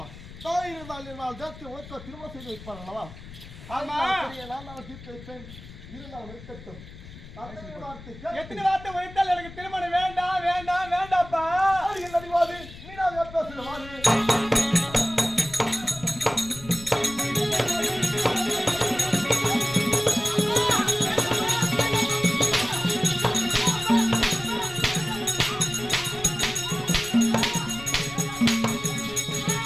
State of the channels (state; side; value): noise; left; rumble, 16 dB below the sound